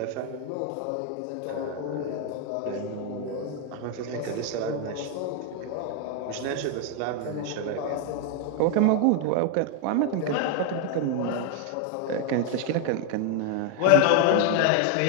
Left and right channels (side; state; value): both; different; correlation 0.00